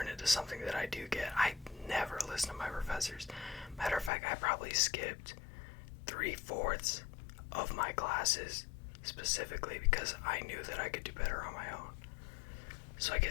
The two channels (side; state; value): right; drops out; at 4.1 s